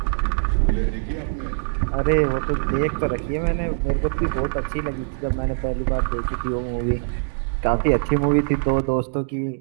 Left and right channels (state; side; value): silent; left; digital silence